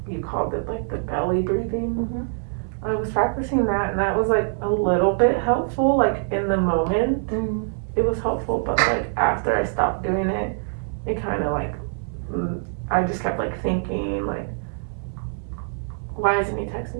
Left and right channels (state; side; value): silent; left; 63 dB below the other